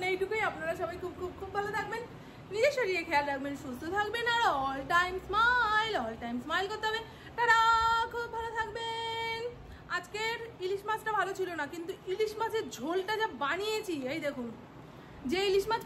এইটুকুই। আপনারা সবাই খুব খুব খুব ভালো থাকবেন, নিজের শরীরে খেয়াল রাখবেন, সুস্থ থাকবেন, আর অল টাইম স্মাইল করতে হবে। তারা খুব ভালো থাকবেন। আজকের ইলিশ মাছটা ভালো ছিল না, কিন্তু ইলিশ মাছের ঝোলটা যা বানিয়েছি, এই দেখুন, যে ইলিশ মাছ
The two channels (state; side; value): identical; both; correlation 1.00